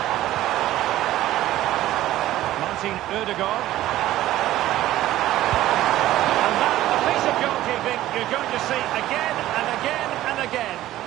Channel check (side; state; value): left; quieter; 14.6 dB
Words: Martin Ødegaard. And that, a piece of goalkeeping you're going to see again and again and again.